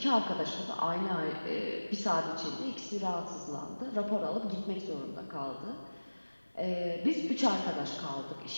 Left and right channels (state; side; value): inverted; both; correlation -1.00